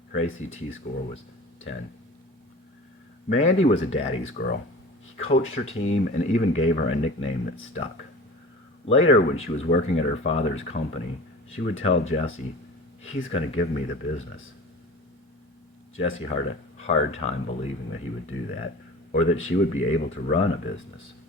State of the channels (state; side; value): normal; both; correlation 0.38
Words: Her ACT score was 10. Mandy was a daddy's girl. He coached her team and even gave her a nickname that stuck. Later, when she was working at her father's company, she would tell Jesse, "He's going to give me the business." Jesse had a hard time believing that he would do that, or that she would be able to run a business.